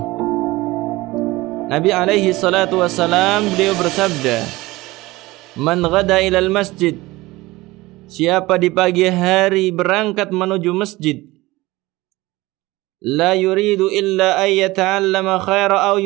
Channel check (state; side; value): quieter; left; 20.0 dB